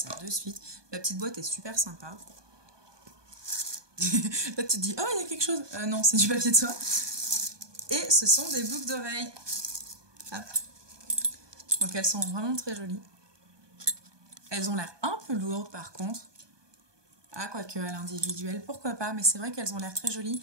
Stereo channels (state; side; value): late; left; 1.2 ms